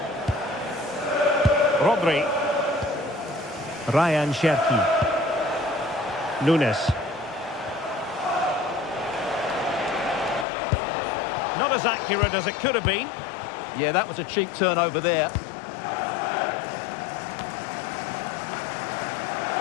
Rodri. Ryan Cherki. Nunes. Not as accurate as it could have been. Yeah, that was a cheap turnover there.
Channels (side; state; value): right; drops out; at 10.5 s